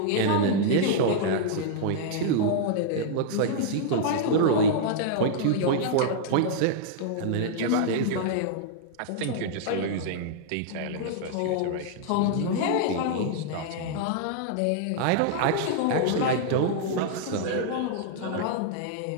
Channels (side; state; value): both; different; correlation -0.01